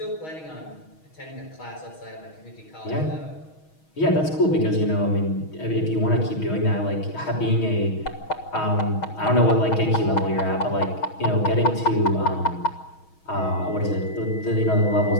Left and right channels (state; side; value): late; right; 6.3 ms